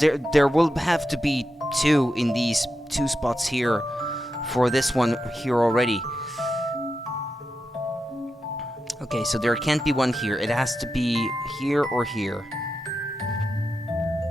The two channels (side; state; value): both; normal; correlation 0.88